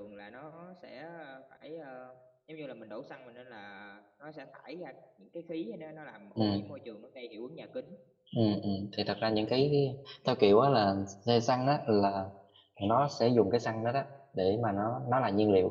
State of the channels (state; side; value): identical; both; correlation 1.00